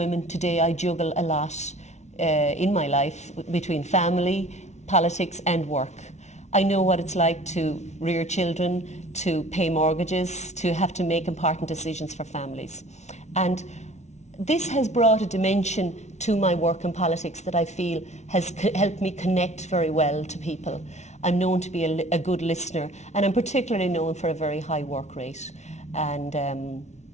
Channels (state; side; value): late; right; 0.32 ms